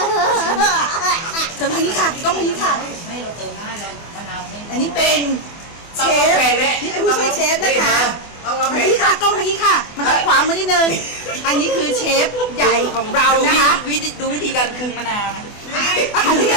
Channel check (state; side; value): late; right; 24 ms